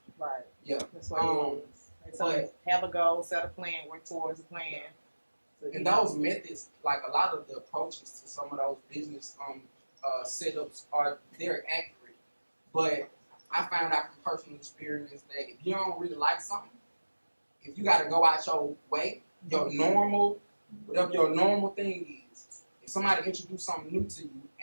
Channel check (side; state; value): both; inverted; correlation -1.00